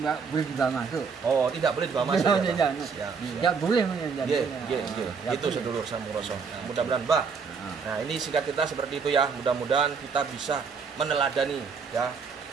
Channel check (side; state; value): left; quieter; 5.6 dB